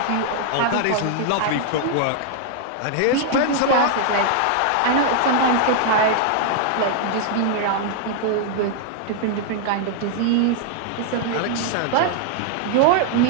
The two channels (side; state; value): both; different; correlation 0.00